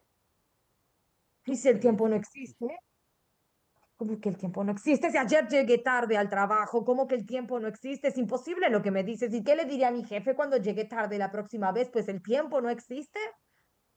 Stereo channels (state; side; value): identical; both; correlation 1.00